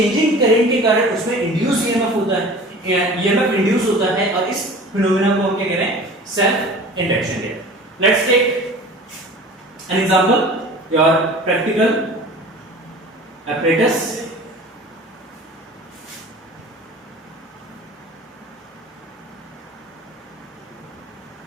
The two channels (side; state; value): both; normal; correlation 0.41